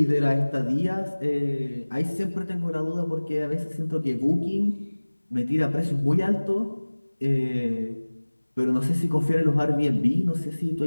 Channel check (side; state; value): both; inverted; correlation -1.00